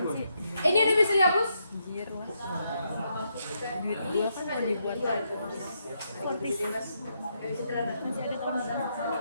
sih? Ini udah bisa dihapus? Anjir lah. Duit gua kan mau dibuat fortis. Masih ada tahun depan.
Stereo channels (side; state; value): both; inverted; correlation -0.79